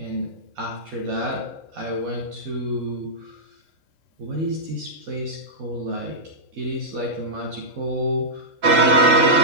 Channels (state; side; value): late; left; 3.7 ms